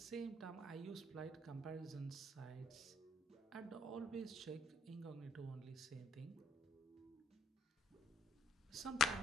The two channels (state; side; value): normal; both; correlation 0.67